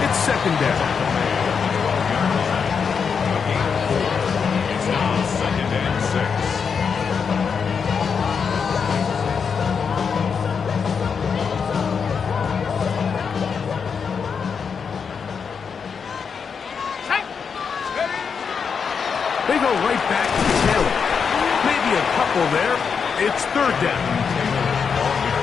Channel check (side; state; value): right; quieter; 6.2 dB